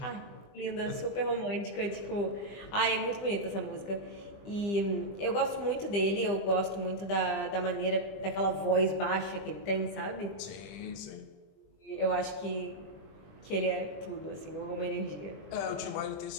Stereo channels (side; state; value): right; late; 20 ms